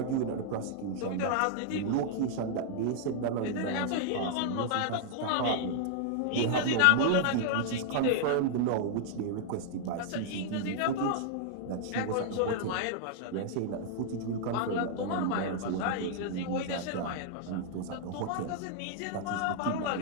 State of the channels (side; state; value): both; different; correlation -0.01